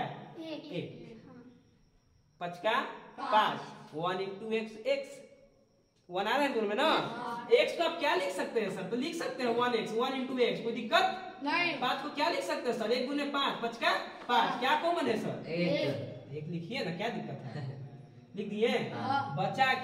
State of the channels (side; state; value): both; identical; correlation 1.00